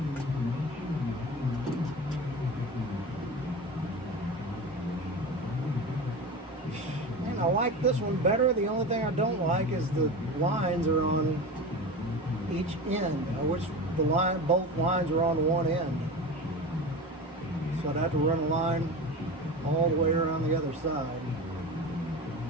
And I like this one better. The only thing I don't like is the lines are on each end. I wish both lines are on one end. So I'd have to run a line all the way around the other side.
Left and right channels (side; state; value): both; normal; correlation 0.29